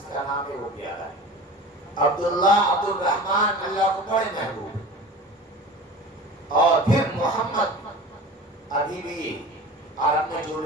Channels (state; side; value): normal; both; correlation 0.37